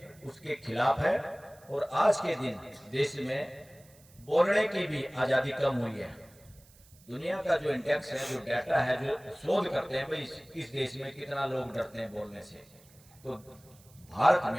उसके खिलाफ है। और आज के दिन देश में बोलने की भी आजादी कम हुई है। दुनिया का जो इंडेक्स है, जो डाटा है, जो शोध करते हैं भाई इस देश में कितना लोग डरते हैं बोलने से, तो भारत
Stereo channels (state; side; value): noise; right; hiss, 27 dB below the sound